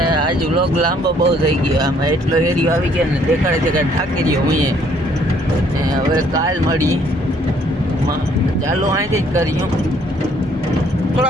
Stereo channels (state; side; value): normal; both; correlation 0.63